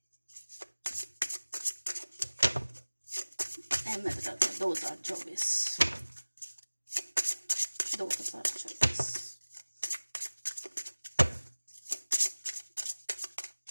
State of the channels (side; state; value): both; inverted; correlation -1.00